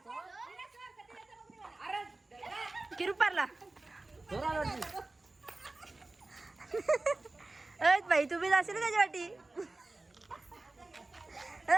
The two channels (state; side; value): quieter; left; 3.0 dB